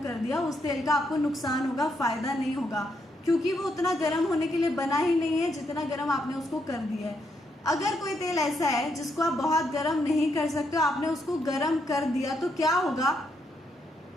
दिया, उस तेल का आपको नुकसान होगा, फ़ायदा नहीं होगा, क्योंकि वो उतना गर्म होने के लिए बना ही नहीं है जितना गर्म आपने उसको कर दिया है। अगर कोई तेल ऐसा है जिसको आप बहुत गर्म नहीं कर सकते हो, आपने उसको गर्म कर दिया, तो क्या होगा,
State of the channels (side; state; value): both; normal; correlation 0.77